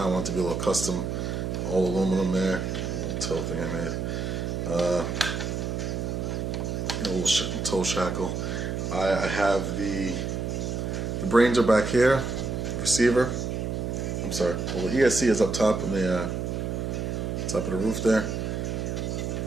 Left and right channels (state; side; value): noise; right; hum, 2 dB below the sound